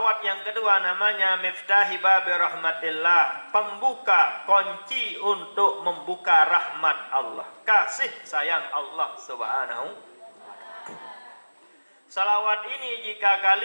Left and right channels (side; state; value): both; inverted; correlation -1.00